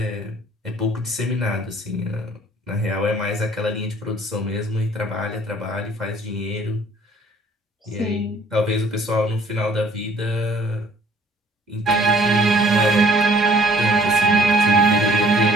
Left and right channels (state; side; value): normal; both; correlation 0.56